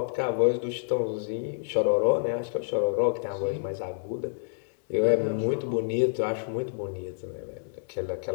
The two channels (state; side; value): silent; right; digital silence